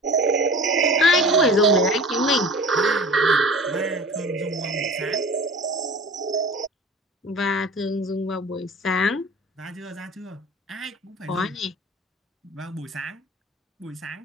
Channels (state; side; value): normal; both; correlation 0.40